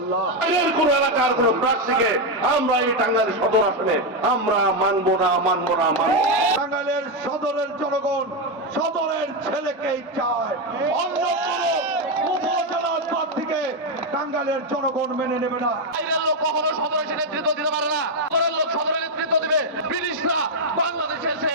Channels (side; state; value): both; normal; correlation 0.06